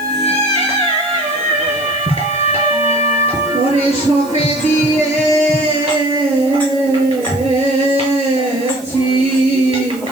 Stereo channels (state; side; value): noise; right; hiss, 20 dB below the sound